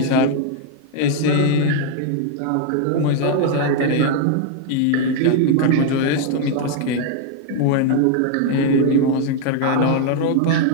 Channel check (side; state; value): both; different; correlation 0.00